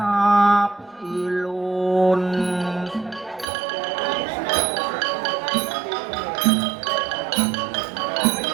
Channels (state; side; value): drops out; left; at 3.5 s